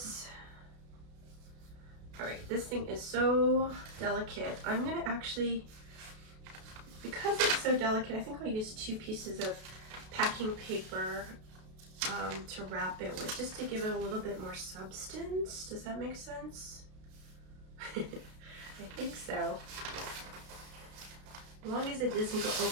All right, this thing is so delicate. I'm gonna actually, because it's so delicate, I think I'll use 2 pieces of packing paper to wrap it with, just to give it a little bit more substance. Does that make sense? I think so. As long as it doesn't go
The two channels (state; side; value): late; left; 32 ms